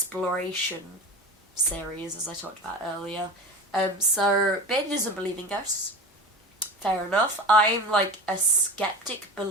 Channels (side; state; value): both; normal; correlation 0.32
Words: series, as I talked about earlier. So, Beardy doesn't believe in ghosts. Fair enough. I'm like a skeptic